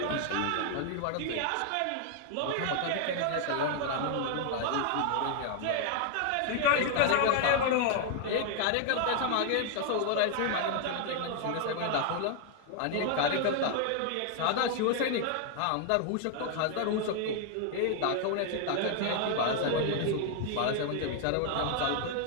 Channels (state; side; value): different; both; correlation 0.00